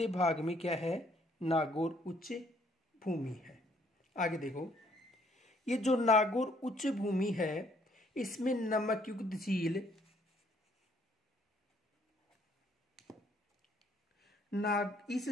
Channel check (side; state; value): both; normal; correlation 0.66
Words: भाग में क्या है? नागौर उच्च भूमि है। आगे देखो, ये जो नागौर उच्च भूमि है इसमें नमकयुक्त झील,